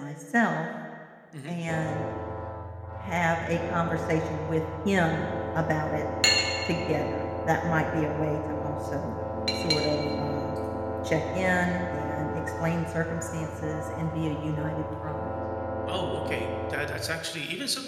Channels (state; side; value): identical; both; correlation 1.00